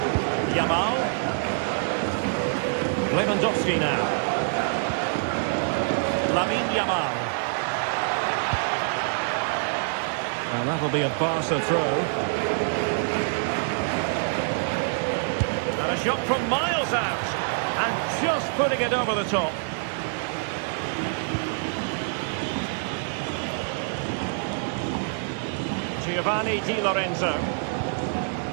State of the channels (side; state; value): left; silent; digital silence